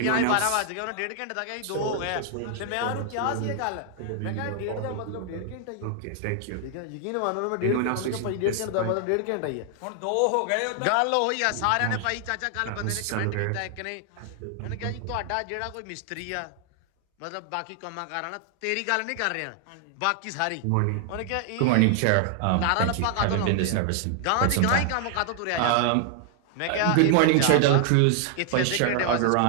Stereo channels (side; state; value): both; different; correlation 0.00